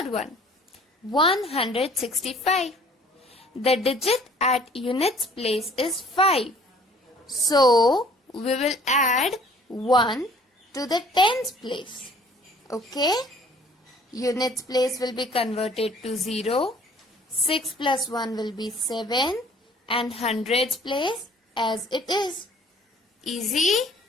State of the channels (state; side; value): normal; both; correlation 0.54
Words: one. 165. The digit at units place is 5. So we will add 1 to the tens place. Okay? Units place will be converted to 0. 6 plus 1 will be 7, and hundreds place as it is. Easy?